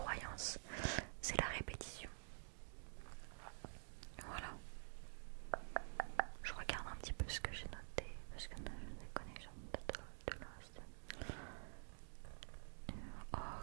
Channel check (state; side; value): silent; left; digital silence